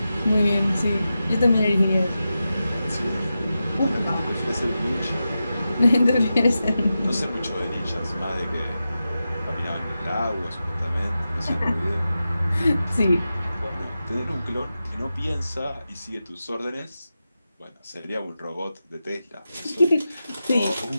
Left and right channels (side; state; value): both; inverted; correlation -0.91